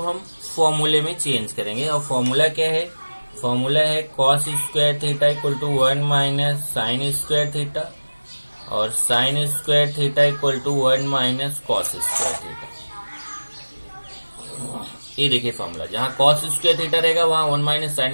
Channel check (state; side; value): inverted; both; correlation -1.00